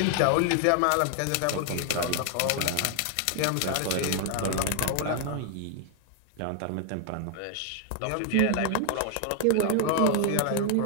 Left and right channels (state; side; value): different; both; correlation 0.00